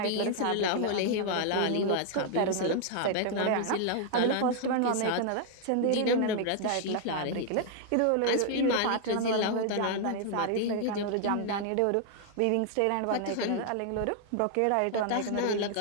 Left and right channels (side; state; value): both; different; correlation 0.00